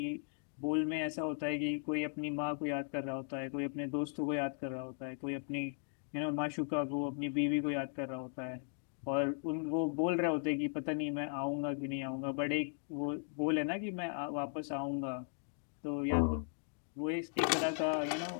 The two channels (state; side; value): silent; right; 53 dB below the other